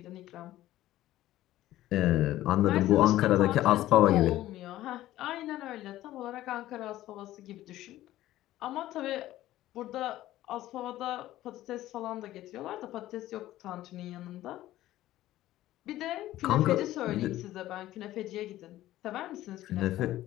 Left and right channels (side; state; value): right; quieter; 14.8 dB